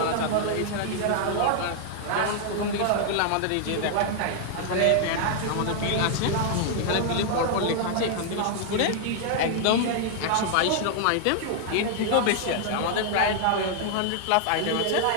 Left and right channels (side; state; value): both; different; correlation 0.00